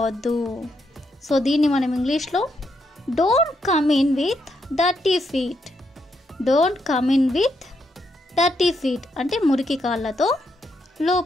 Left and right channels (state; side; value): normal; both; correlation 0.79